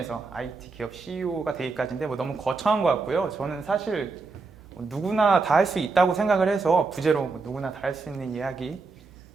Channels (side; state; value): left; quieter; 4.1 dB